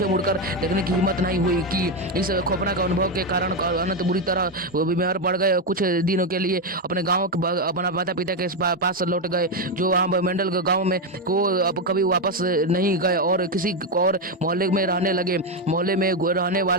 मुड़कर देखने की हिम्मत नहीं हुई कि इस खौफनाक अनुभव के कारण अनंत बुरी तरह बीमार पड़ गए। कुछ दिनों के लिए अपने गांव अपना माता पिता के पास लौट गए जो वहाँ मेंढल गांव में को अब कभी वापस नहीं गए और किसी और मोहल्ले में रहने लगे। मोहल्ले में रहने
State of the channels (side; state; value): both; normal; correlation 0.07